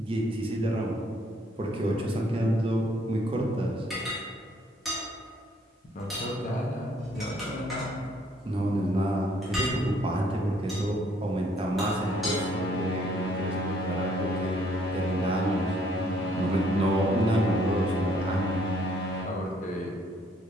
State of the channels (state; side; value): normal; both; correlation 0.65